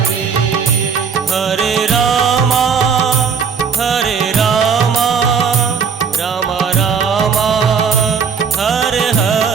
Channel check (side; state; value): left; quieter; 6.1 dB